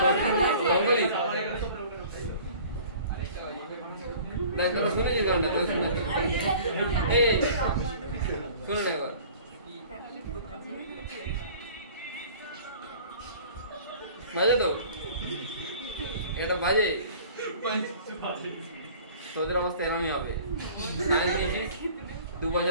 শুনেছি গানটা, শুনেছি। এই শুনে না এবার, বাজে তো, এটা বাজে, তোদের অবস্থা এরমই হবে। 2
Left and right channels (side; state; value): both; inverted; correlation -0.47